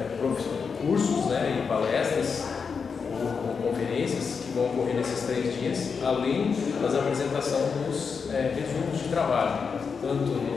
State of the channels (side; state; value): right; quieter; 5.7 dB